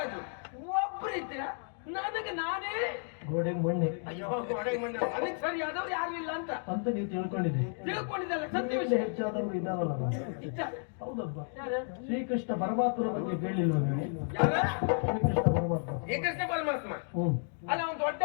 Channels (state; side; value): silent; right; 56 dB below the other